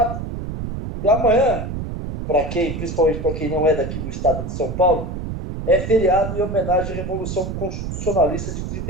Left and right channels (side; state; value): right; noise; rumble, 5 dB below the sound